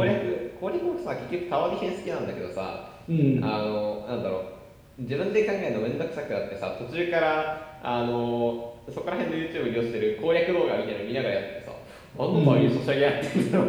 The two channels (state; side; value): identical; both; correlation 1.00